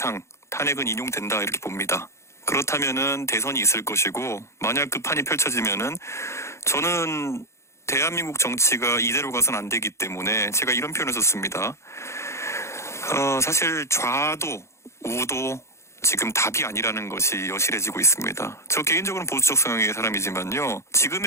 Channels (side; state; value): right; late; 0.13 ms